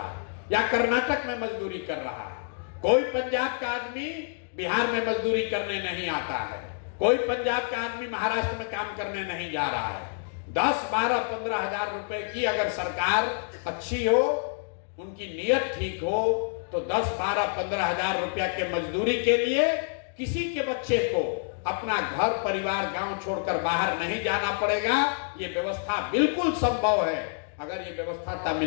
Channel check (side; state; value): right; silent; digital silence